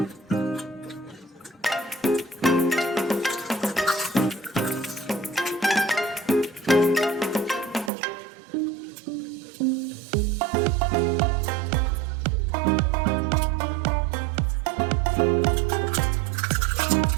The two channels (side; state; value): left; drops out; at 7.9 s